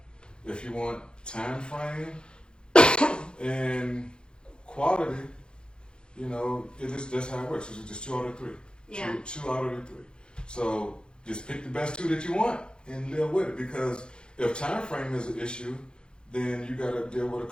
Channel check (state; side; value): late; right; 0.050 ms